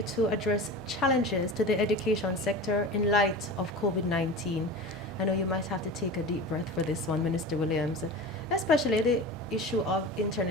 to address challenges to the education sector in light of COVID-19. I know you might have to take a deep breath for this one, Minister Williams, especially the issue of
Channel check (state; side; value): normal; both; correlation 0.32